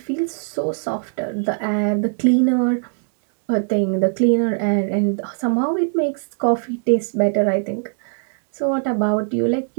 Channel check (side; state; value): left; silent; 57 dB below the other